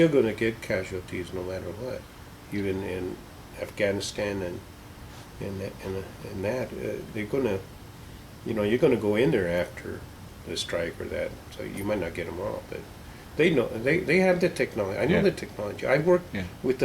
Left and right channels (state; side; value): identical; both; correlation 1.00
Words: going to get casualties no matter what, even in Afghanistan and that. They're going to, you know, you're going to go in there after the strike or that, so you might not get them all, but they know, they have the technology. I know Yeah. the technology. I worked Yeah. with